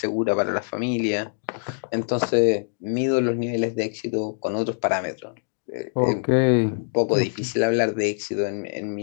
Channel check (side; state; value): right; silent; digital silence